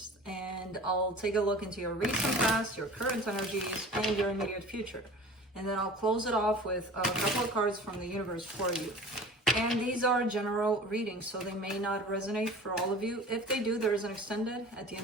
And I'll take a look into your recent past, your current energies, and your immediate future. And then I'll close it off with a couple of cards from the universe for you. And these are general readings, so they may not resonate for all of you. If they do, there is an extended at the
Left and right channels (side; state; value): both; normal; correlation 0.41